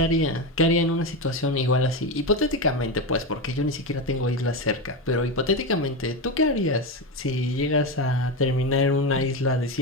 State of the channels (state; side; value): normal; both; correlation 0.15